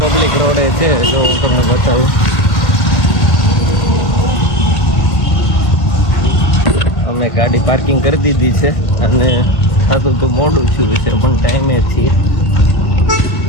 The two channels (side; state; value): right; late; 1.5 ms